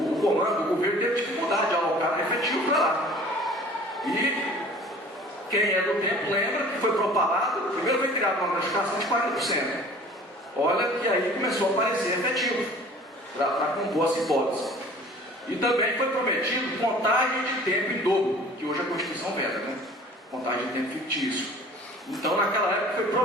comando, o governo teve dificuldade de alocar efetivo para lá. E quem é do tempo lembra que foi propalado, primeiro foi criada uma gratificação de 40%. Olha que aí começou a aparecer efetivo para compor as hipóteses. E também foi prometido contagem de tempo em dobro, que hoje a Constituição veda, né? Contagem de tempo fictício. Então naquela época foi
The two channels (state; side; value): normal; both; correlation 0.47